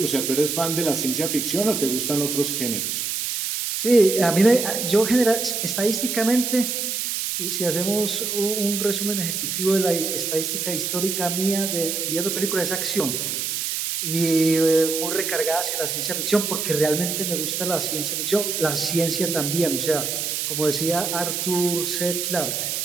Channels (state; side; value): noise; right; hiss, 2 dB below the sound